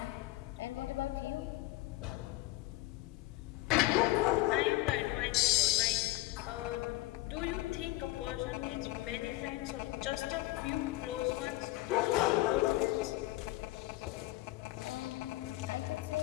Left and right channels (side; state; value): right; quieter; 18.7 dB